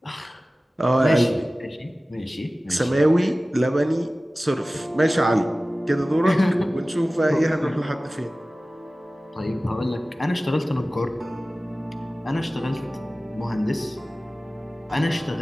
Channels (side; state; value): both; normal; correlation 0.97